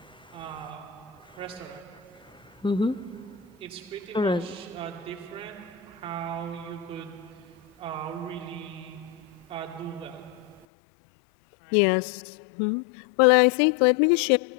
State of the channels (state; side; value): drops out; right; at 10.7 s